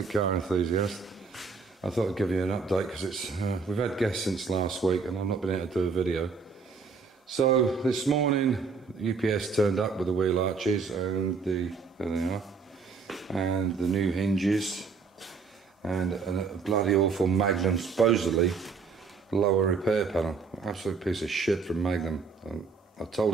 car enthusiasts. I thought I'd give you an update because it's we've had guests since last week and I've not been able to do a video. So this morning UPS turned up with the wheel arches and there they are, and the new hinges and a bloody awful Magnum supposedly lower repair panel. Absolute piece of shit from Magnum. I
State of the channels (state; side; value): quieter; left; 5.0 dB